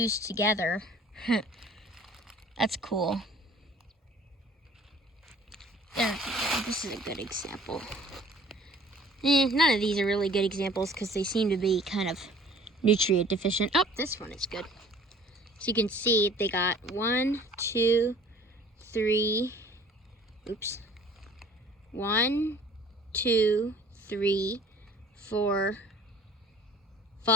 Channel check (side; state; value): both; normal; correlation 0.51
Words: together. That's cool. There, this is a good example. None of these are really good examples because they seem to be kind of nutrient deficient. Oh, this one is good. So you can see they got 1, 2, 3, oops. 1, 2, 3, 4,